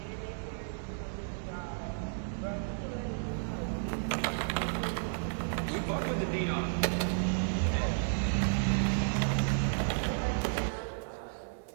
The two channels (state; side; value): silent; left; 56 dB below the other